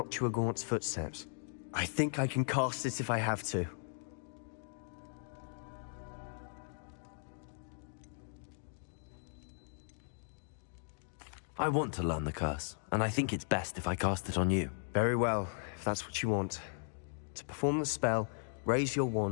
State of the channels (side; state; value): right; silent; digital silence